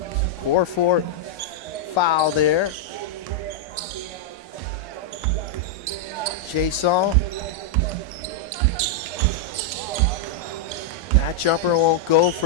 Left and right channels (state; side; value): normal; both; correlation -0.03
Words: Core 4 foul there. Jason. That jumper won't go